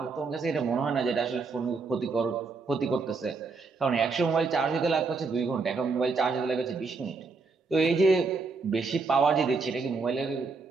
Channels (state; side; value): quieter; left; 4.4 dB